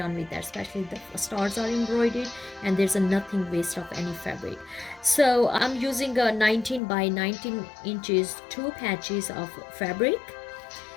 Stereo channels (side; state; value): right; drops out; at 6.8 s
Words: with that, especially the stars are embroidered and there's a nothing waste of any fabric. So I'm using a 19 by 19 inches two patches of fabric,